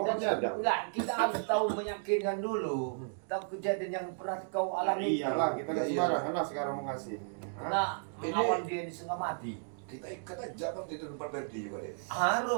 Obatnya ada. enggak, kita harus tahu meyakinkan dulu. Tahu kejadian yang pernah kau alami. Iyalah, kita nggak Iya, iya. sembarangan lah sekarang mau ngasih. Karena melawan dia ini setengah mati. Kita ikat aja kan di tempat Ferdi juga deh.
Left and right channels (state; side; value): silent; left; digital silence